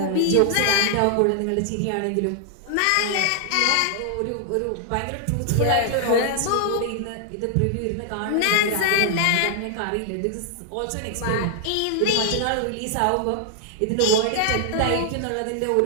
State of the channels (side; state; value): both; different; correlation 0.00